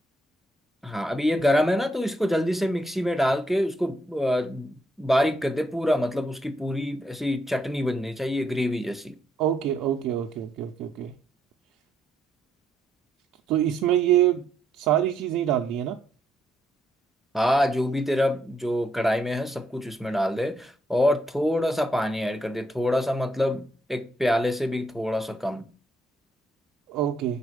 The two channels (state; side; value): normal; both; correlation 0.75